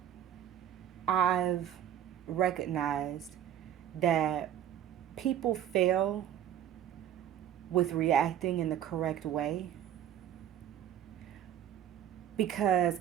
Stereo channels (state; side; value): quieter; left; 10.6 dB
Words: I've recognized that people fail with reacting in the correct way because